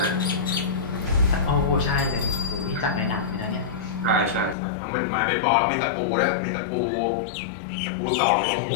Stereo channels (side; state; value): right; drops out; at 4.5 s